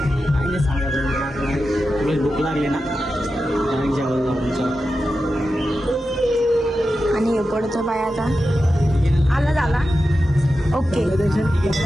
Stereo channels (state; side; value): normal; both; correlation 0.91